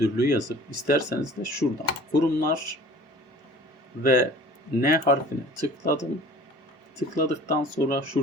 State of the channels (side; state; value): both; normal; correlation 0.46